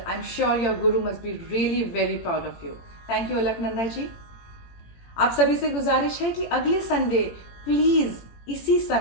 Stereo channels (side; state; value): right; late; 18 ms